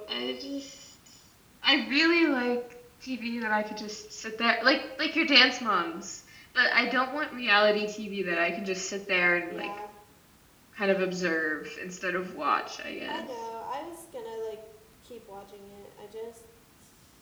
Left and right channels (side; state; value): both; identical; correlation 1.00